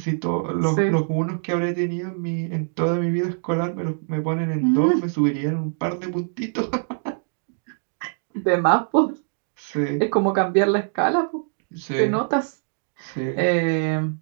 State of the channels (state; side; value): silent; left; digital silence